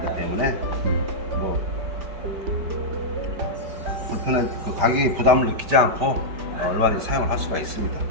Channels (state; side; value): late; left; 5.1 ms